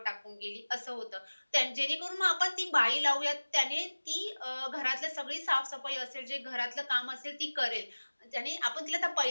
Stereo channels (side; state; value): both; inverted; correlation -1.00